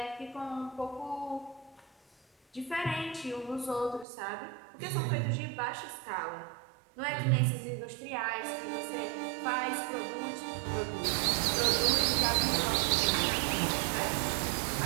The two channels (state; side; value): drops out; left; at 4.0 s